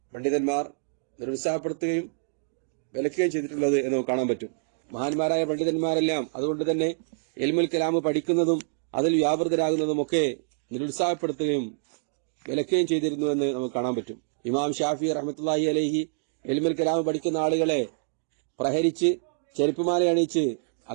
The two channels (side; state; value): left; silent; digital silence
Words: പണ്ഡിതന്മാർ നിരുത്സാഹപ്പെടുത്തുകയും വിലക്കുകയും ചെയ്തിട്ടുള്ളത് എന്ന് കാണാൻ പറ്റും. മഹാന്മാരായ പണ്ഡിതന്മാരെല്ലാം അതുകൊണ്ട് തന്നെ ഇൽമുൽ കലാം പഠിക്കുന്നതും അതിൽ വ്യാപൃതരാകുന്നതുമൊക്കെ നിരുത്സാഹപ്പെടുത്തുകയും വിലക്കുകയും ചെയ്തിരുന്നുവെന്ന് നമുക്ക് കാണാൻ പറ്റും. ഇമാം ഷാഫി റഹ്മത്തുള്ളാഹി അലൈഹി ഇൽമുൽ കലാം പഠിക്കുന്ന ആളുകളെ പ്രഹരിച്ച് ചെരുപ്പുമാല അണിയിച്ച്